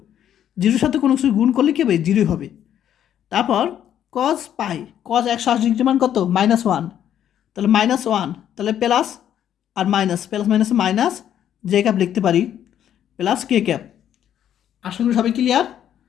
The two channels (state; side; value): quieter; right; 10.2 dB